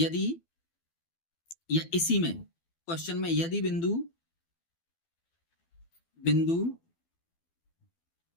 या इसी में क्वेश्चन में यदि बिंदु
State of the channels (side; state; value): right; late; 12 ms